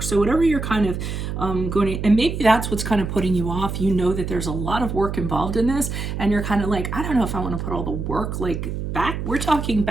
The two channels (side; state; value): right; noise; hum, 4 dB below the sound